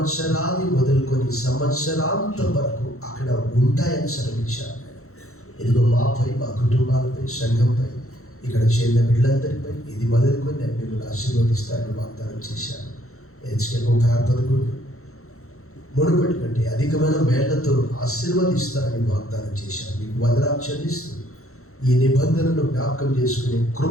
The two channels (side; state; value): right; late; 0.63 ms